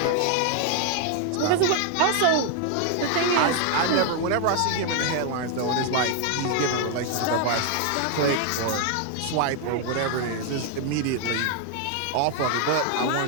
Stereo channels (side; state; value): both; different; correlation 0.00